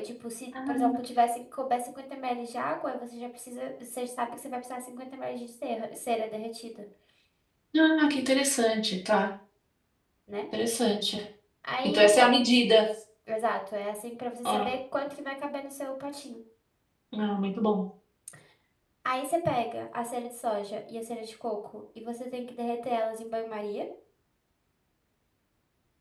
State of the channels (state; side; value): identical; both; correlation 1.00